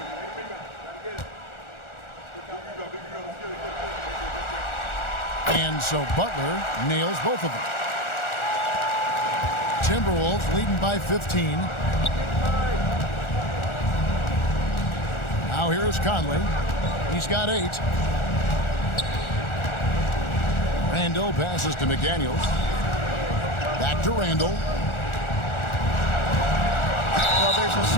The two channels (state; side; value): late; right; 1.4 ms